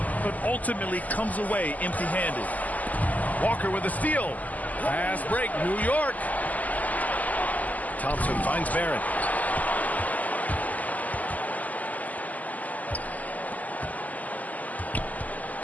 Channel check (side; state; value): right; late; 0.078 ms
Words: but ultimately comes away empty-handed. Walker with a steal. Pass break, New York. Thompson finds Barrett.